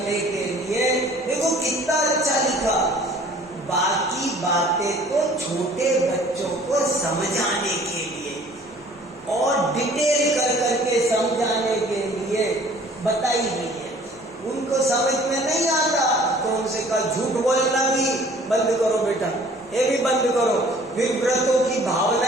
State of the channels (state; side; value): normal; both; correlation 0.52